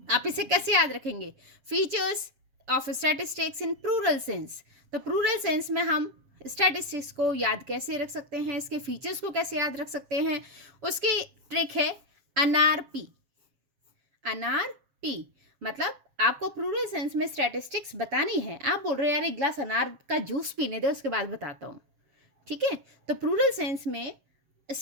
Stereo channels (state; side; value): late; left; 7.4 ms